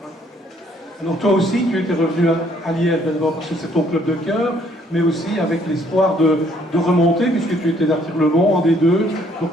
Alors toi aussi, tu étais revenu à Liège, d'abord parce que c'est ton club de cœur, mais aussi avec l'espoir de remonter, puisque tu étais d'Artigues-le-Mont en D2.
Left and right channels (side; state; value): both; normal; correlation 0.65